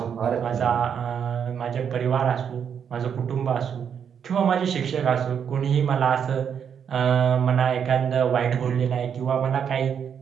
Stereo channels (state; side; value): quieter; left; 7.8 dB